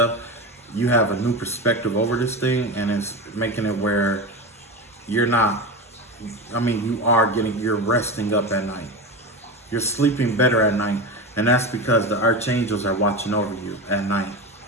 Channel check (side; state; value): both; normal; correlation 0.22